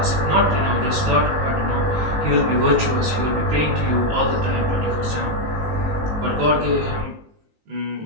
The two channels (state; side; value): late; left; 19 ms